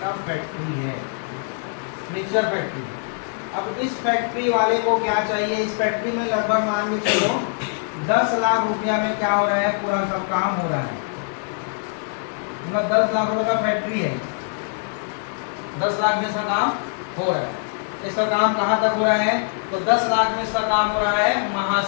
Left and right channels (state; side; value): silent; right; 58 dB below the other